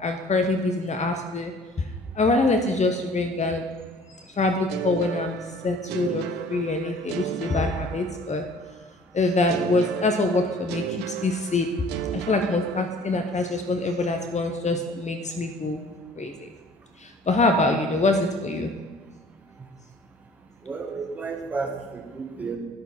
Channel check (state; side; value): normal; both; correlation 0.51